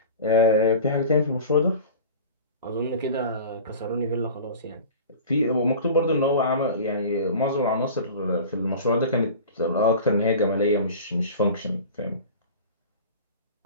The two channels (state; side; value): inverted; both; correlation -0.37